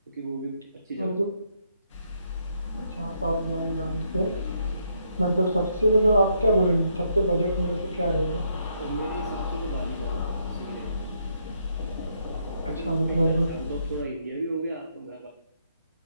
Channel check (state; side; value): inverted; both; correlation -0.75